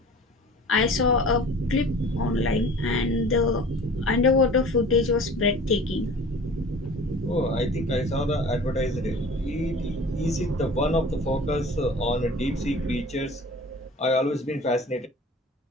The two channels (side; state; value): both; normal; correlation 0.43